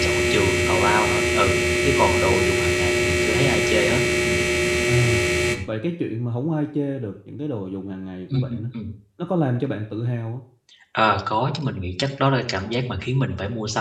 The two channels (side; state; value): both; identical; correlation 1.00